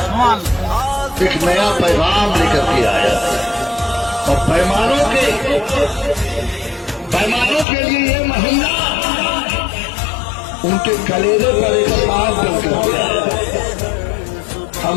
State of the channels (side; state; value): right; drops out; at 7.7 s